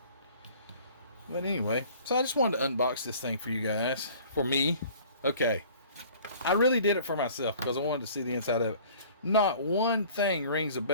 But anyway, so I just wanted to unbox this thing for you guys. For me. Okay. I really did it for myself because I wanted to see the inside of it. Not one thing rings a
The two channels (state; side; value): inverted; both; correlation -0.50